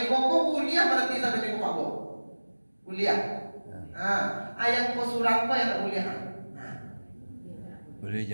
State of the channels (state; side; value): inverted; both; correlation -1.00